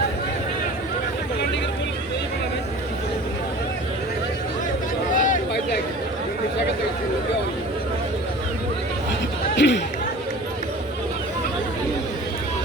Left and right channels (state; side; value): normal; both; correlation 0.41